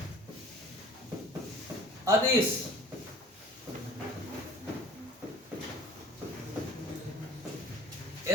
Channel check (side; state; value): both; normal; correlation 0.47